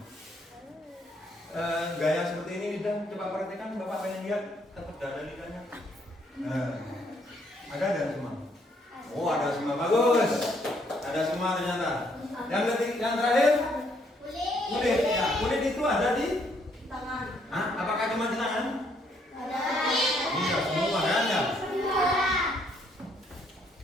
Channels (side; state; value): both; normal; correlation 0.69